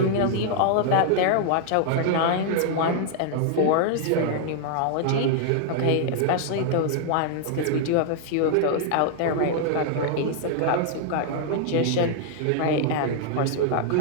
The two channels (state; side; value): different; both; correlation 0.00